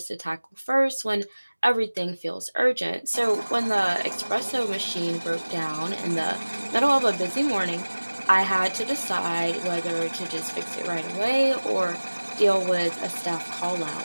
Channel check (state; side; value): inverted; both; correlation -1.00